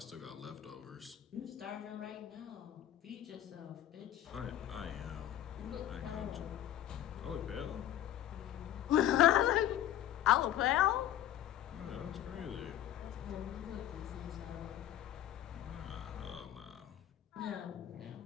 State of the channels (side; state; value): right; quieter; 12.0 dB